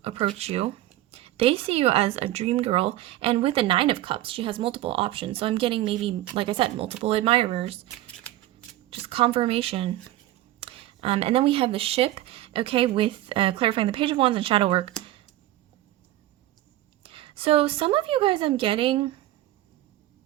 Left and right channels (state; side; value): quieter; left; 15.1 dB